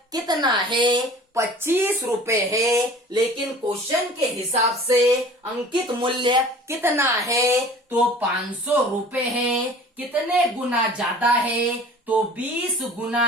कितना है? 25 रुपए है। लेकिन क्वेश्चन के हिसाब से अंकित मूल्य कितना है? तो 500 रुपए है। कितने गुना ज्यादा है? तो 20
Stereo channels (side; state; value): both; normal; correlation 0.45